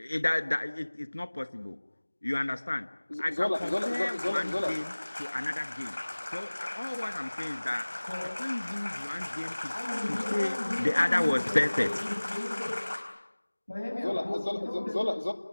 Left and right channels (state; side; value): inverted; both; correlation -1.00